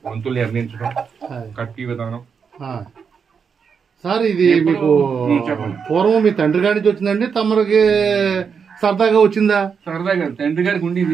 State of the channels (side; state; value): left; quieter; 6.3 dB